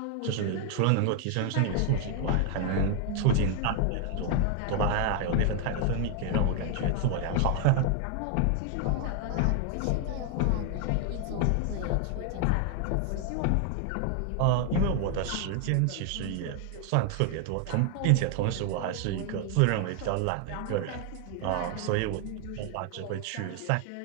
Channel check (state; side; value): different; both; correlation 0.00